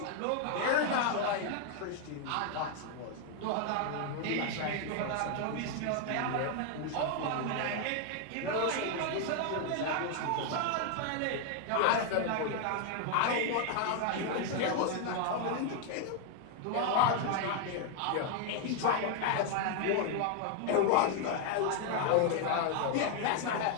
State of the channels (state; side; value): different; both; correlation 0.00